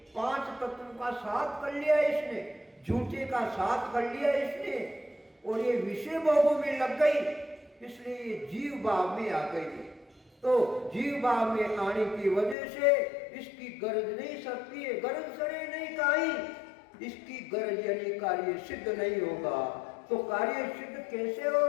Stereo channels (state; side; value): drops out; right; at 12.6 s